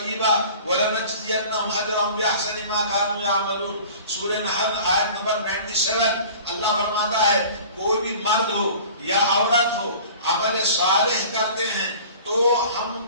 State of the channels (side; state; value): both; inverted; correlation -0.44